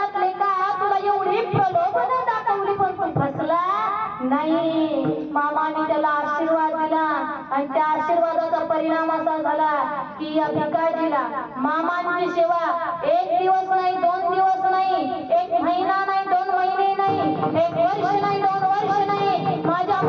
लेका तुला एवढी प्रलोभन दाखवली पण तू फसला नाही. मामाने त्याला आशीर्वाद दिला आणि त्या आशीर्वादाचा परिणाम असा झाला की या भिकाजीला मामांची सेवा 1 दिवस नाही, 2 दिवस नाही, 1 महिना नाही, 2 महिने नाही, 1 वर्ष नाही, 2 वर्ष नाही. माझ्या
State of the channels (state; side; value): identical; both; correlation 1.00